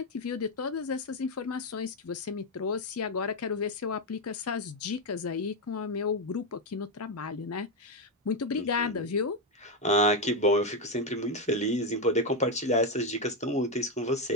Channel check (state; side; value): normal; both; correlation 0.06